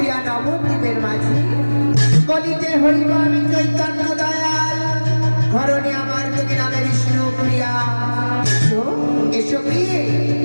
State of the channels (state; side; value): inverted; both; correlation -1.00